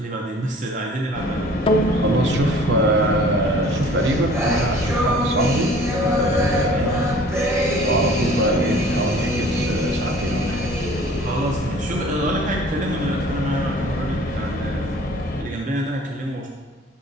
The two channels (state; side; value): normal; both; correlation 0.50